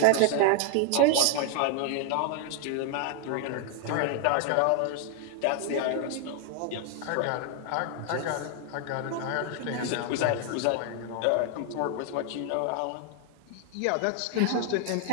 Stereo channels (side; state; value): both; different; correlation 0.00